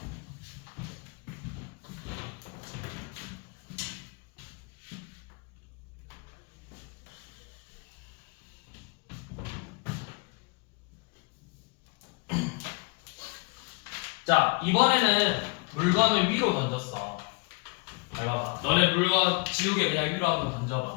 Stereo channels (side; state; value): right; quieter; 30.8 dB